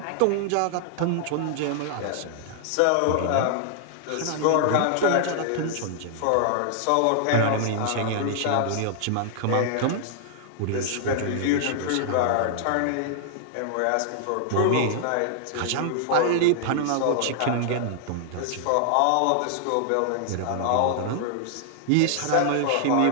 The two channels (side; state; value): both; different; correlation -0.01